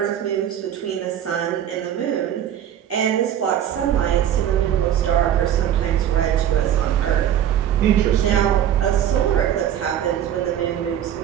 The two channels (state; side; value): quieter; left; 10.4 dB